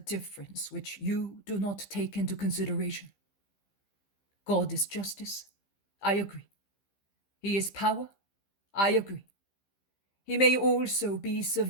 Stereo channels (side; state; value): right; late; 15 ms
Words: which you do not take into consideration. God is justice. I agree. He is power. I agree. He may also be